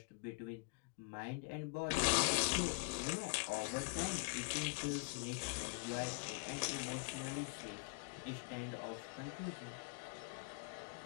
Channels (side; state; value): right; quieter; 34.7 dB